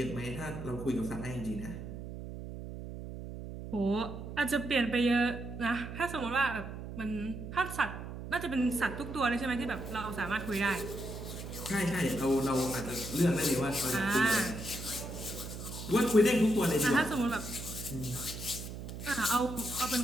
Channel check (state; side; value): noise; right; hum, 9 dB below the sound